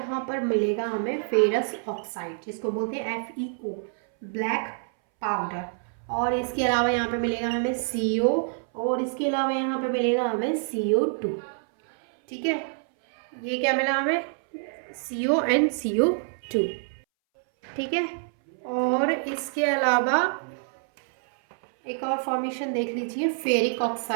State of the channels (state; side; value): silent; left; 60 dB below the other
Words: पर मिलेगा हमें फेरस ऑक्साइड, जिसको बोलते हैं FeO, ब्लैक पाउडर। और इसके अलावा यहाँ पे मिलेगा हमें CO, और इसके अलावा यहाँ पे मिलेगा हमें CO2। ठीक है, ये क्या मिला हमें, CO and CO2। ठीक है, और इसके अलावा एक और फॉर्मेशन देख लीजिए फेरिक